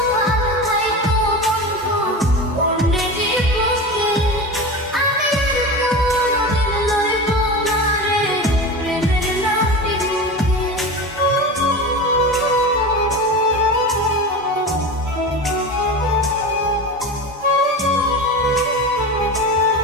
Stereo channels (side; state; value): both; normal; correlation 0.27